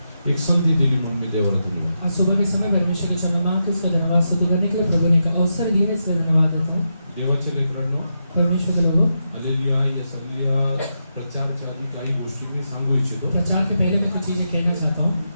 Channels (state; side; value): inverted; both; correlation -0.85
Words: एक संधी दिली म्हणून मी देवाला दिली. आज सुबह के समय परमेश्वर के क्षमा मांग के उसका धन्यवाद स्तुति करने के लिए प्रभु ने एक अवसर दिया, इसलिए धन्यवाद देता हूँ. देवाच्या लेकरांनो, परमेश्वर के लोगों, हालेलुया. या सगळ्या प्रचाराच्या आधी काही गोष्टी मी सांगू इच्छितो. प्रचार के पहले मैं कुछ चीजें कहना चाहता हूँ.